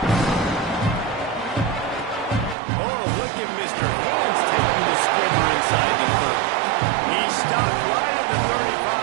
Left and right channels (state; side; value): drops out; left; at 2.6 s